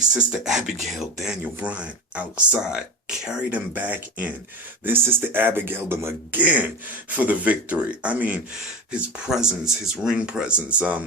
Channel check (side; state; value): both; normal; correlation 0.26